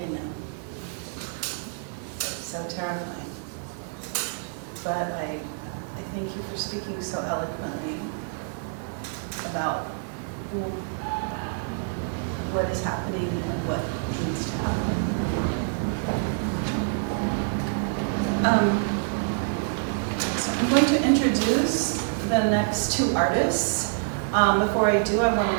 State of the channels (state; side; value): silent; left; digital silence